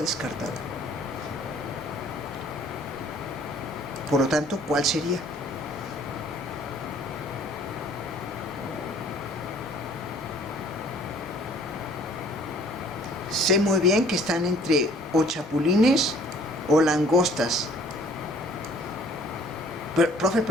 Por lo tanto, ¿cuál sería? Sé muy bien que están entre o chapulines o langostas. Pero, profe,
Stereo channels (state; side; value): normal; both; correlation 0.55